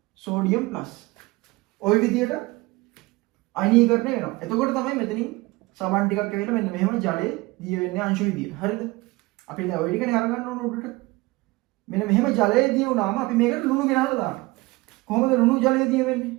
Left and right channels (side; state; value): left; quieter; 22.0 dB